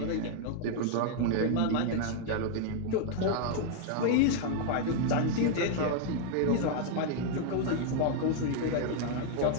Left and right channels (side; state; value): both; different; correlation 0.00